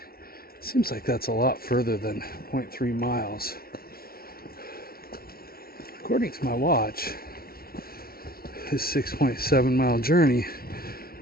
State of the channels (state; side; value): late; right; 0.44 ms